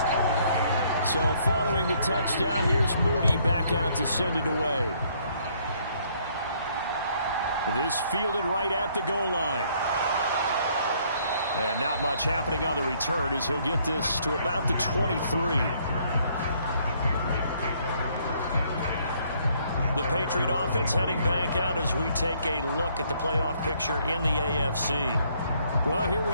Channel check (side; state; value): both; inverted; correlation -0.66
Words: So following the touchdown, here's Moody back out to send it away. This fielded right at the goal line. And not much happening on the return as he'll get this to about the 23. The Patriot offense heading back out as we take a look at the playoff picture in the AFC. Well, here